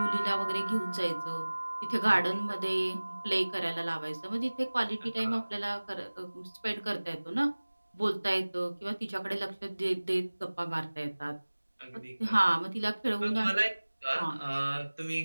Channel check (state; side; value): inverted; both; correlation -1.00